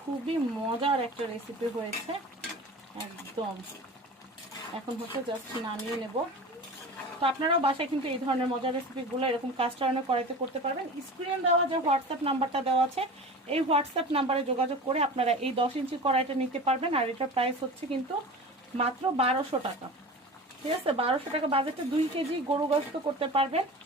খুবই মজার একটা রেসিপি হয়েছে একদম। এখন হচ্ছে জাস্ট নামিয়ে নেব। তো আপনারাও বাসায় কিন্তু এই ধরনের মজার রেসিপিগুলো এরকম কাস্ট আয়রনের কড়াইতে করতে পারবেন। স্ক্রিনে দেওয়া যে হোয়াটসঅ্যাপ নাম্বারটা দেওয়া আছে এই হোয়াটসঅ্যাপ নাম্বারে যোগাযোগ করে আপনারা এই 10 ইঞ্চি কড়াইটা নিতে পারবেন। আর এটার প্রাইস হচ্ছে কিন্তু মাত্র 1200 টাকা। ঠিক আছে, 1200 টাকা বাজেটে 2 কেজি গরু গোশত করতে পারবেন।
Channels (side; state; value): both; normal; correlation 0.35